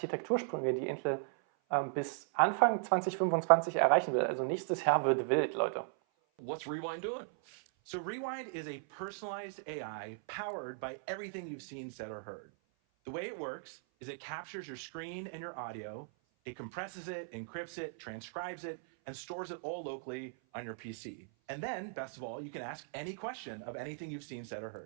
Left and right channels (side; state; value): left; silent; 53 dB below the other